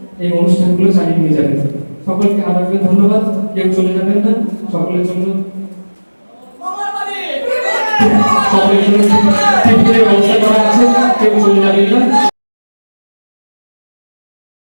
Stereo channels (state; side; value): inverted; both; correlation -1.00